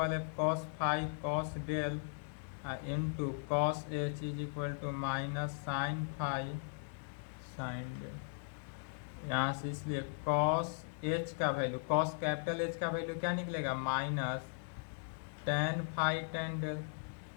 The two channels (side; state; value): right; silent; digital silence